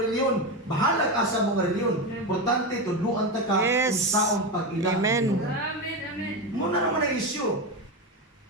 Bahala ka sa mga reliyon. Importante tudluan ta ka kung saon pag-ila. Amen. Muna naman ang issue.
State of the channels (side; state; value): both; normal; correlation 0.16